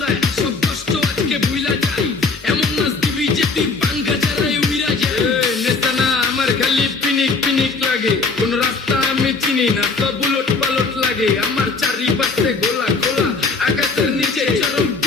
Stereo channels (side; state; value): right; quieter; 4.2 dB